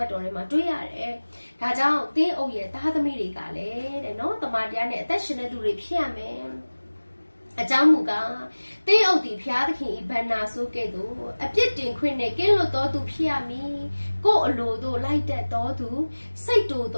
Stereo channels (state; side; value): inverted; both; correlation -1.00